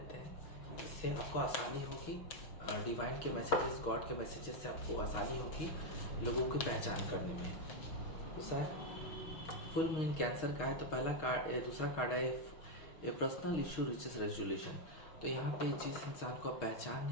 हैं, इससे आपको आसानी होगी। डिवाइन के मैसेजेस, गॉड के मैसेजेस से आपको आसानी होगी लोगों की पहचान करने में। दूसरा फुल मून कैंसर का है, तो पहला कार्ड, दूसरा कार्ड है a personal issue riches resolution. तो यहाँ पे जिस इंसान को आप पहचान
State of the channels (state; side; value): late; right; 6.3 ms